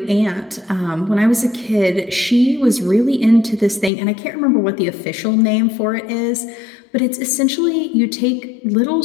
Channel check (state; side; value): drops out; right; at 3.9 s